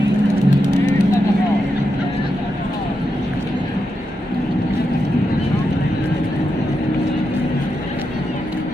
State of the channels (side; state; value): both; normal; correlation 0.86